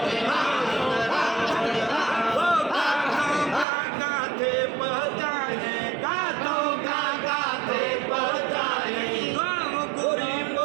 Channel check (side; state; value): left; drops out; at 3.7 s